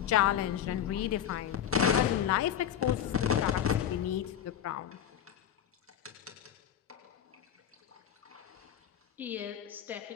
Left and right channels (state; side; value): quieter; right; 9.7 dB